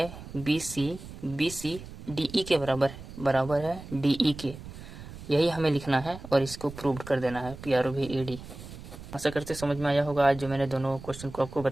BC DE के बराबर है DE के, यही हमें लिखना है और इसको प्रूव कर देना है PROVED। आशा करते समझ में आया होगा आज जो मैंने दोनों क्वेश्चन को आपको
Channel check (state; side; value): noise; right; rumble, 14 dB below the sound